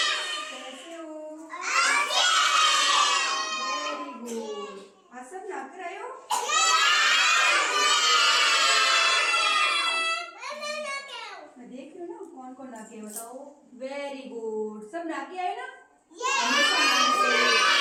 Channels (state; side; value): identical; both; correlation 1.00